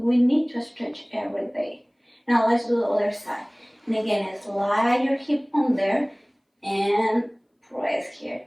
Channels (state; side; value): identical; both; correlation 1.00